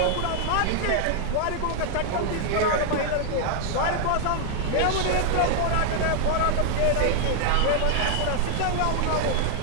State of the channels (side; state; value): both; different; correlation 0.00